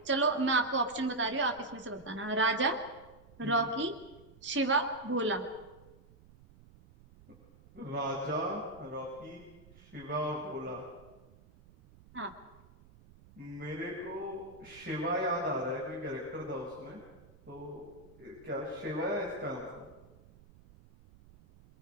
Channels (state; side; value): noise; right; rumble, 23 dB below the sound